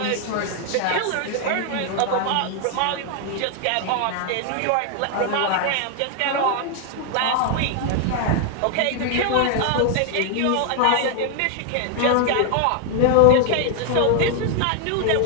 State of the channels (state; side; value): different; both; correlation 0.00